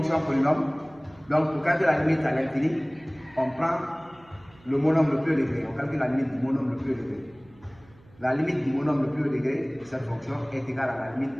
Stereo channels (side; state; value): right; noise; hum, 27 dB below the sound